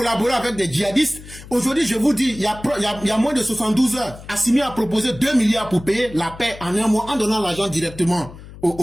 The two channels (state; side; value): noise; left; hum, 17 dB below the sound